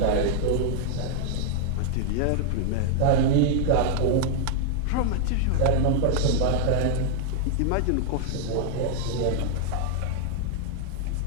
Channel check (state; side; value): different; both; correlation 0.00